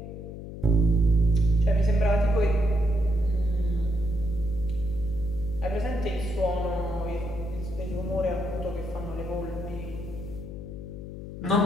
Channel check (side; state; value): left; noise; hum, 10 dB below the sound